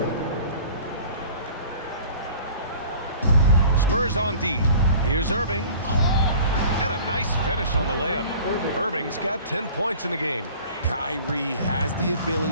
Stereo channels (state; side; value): inverted; both; correlation -0.46